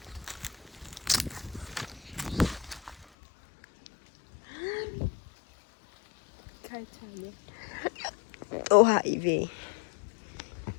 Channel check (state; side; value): drops out; right; at 3.1 s